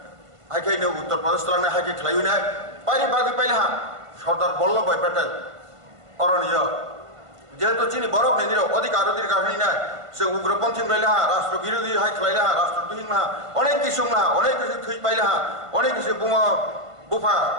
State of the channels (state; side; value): late; left; 1.5 ms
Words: হাইকে উত্তরপ্রদেশ তলাংনাই হাইকে খাইনাই বাইরে বাগি পাইলে সর্দার বল্লভভাই প্যাটেল অরণীয় যেহেতু চিনি বরফ নেই অধিকার হই নাই जों উগ্রপন্থী লাইলে রাষ্ট্র বিরোধী হাই খাইলে রাষ্ট্রদ্রোহী অনেক কিছু অনেক কিছু থুই পাইলে অনেক কিছু বোমা বুফা